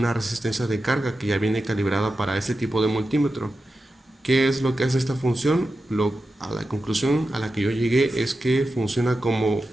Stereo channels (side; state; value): both; normal; correlation 0.91